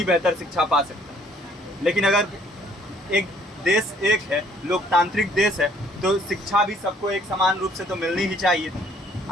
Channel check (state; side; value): normal; both; correlation 0.61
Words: बेहतर शिक्षा पा सकता है। लेकिन अगर एक देश एक है, लोकतांत्रिक देश है, तो शिक्षा भी सबको एक समान रूप से तो मिलनी ही चाहिए।